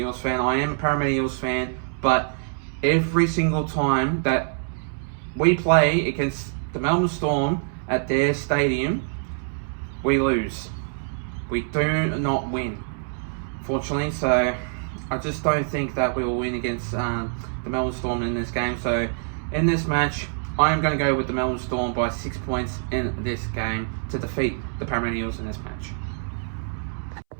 fan. I am a Parramatta Eels fan, but every single time that we play against the Melbourne Storm at their stadium, we lose. We do not win, fortunately. So I just don't think that we will win against the Melbourne Storm in this game. So in this match, I am going to go with the Melbourne Storm by 6 points in this game to defeat the Parramatta Eels in this match.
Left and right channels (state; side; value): silent; left; 62 dB below the other